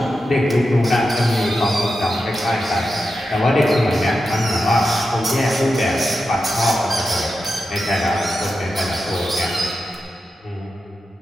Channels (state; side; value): normal; both; correlation 0.90